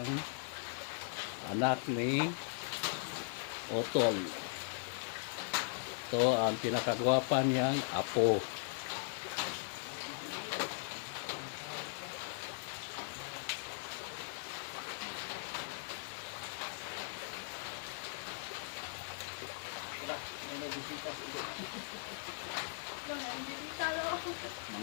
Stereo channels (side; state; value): right; silent; digital silence